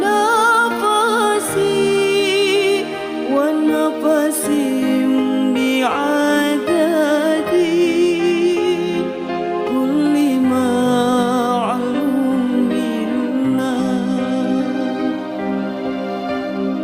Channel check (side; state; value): both; identical; correlation 1.00